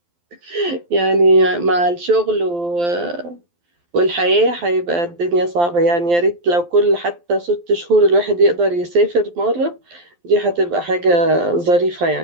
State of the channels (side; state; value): left; late; 12 ms